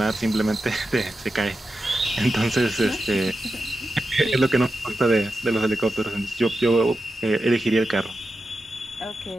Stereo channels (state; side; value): normal; both; correlation 0.90